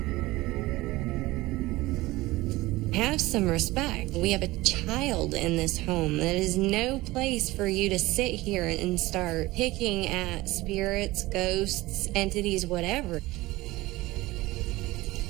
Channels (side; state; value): left; quieter; 19.4 dB